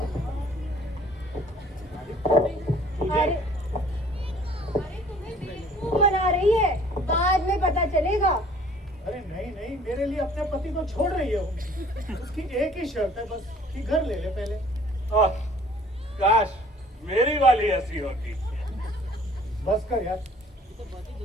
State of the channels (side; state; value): both; normal; correlation 0.54